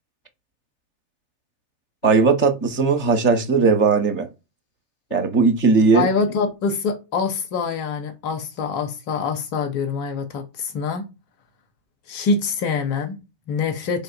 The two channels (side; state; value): right; late; 3.4 ms